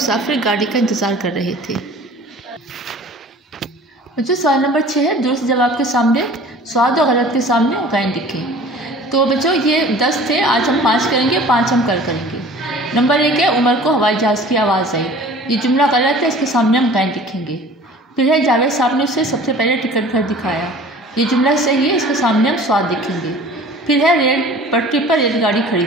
गाड़ी का इंतज़ार कर रहे थे। बच्चों सवाल नंबर 6 है दुरुस्त जवाब के सामने स्वाद और गलत के सामने गैन लिखें। तो बच्चों ये 10 थे, आज हम 5 करेंगे, 5 हम कल करेंगे। नंबर 1 है उमर को हवाई जहाज़ की आवाज़ आई। ये जुमला गलत है, इसके सामने हम गैन लिखेंगे। फिर है जावेद साहब ने उसे सबसे पहले टिकट घर दिखाया। ये जुमला सही है, इसके सामने हम स्वाद लिखेंगे। फिर है रेल पटरी पर रेलगाड़ी खड़ी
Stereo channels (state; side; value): normal; both; correlation 0.45